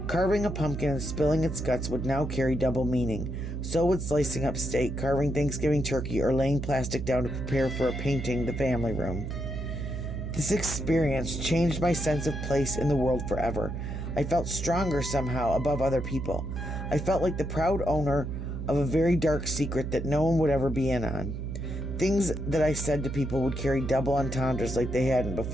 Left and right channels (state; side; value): noise; right; hum, 5 dB below the sound